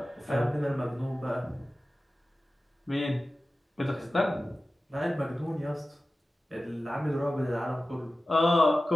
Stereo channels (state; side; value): normal; both; correlation 0.95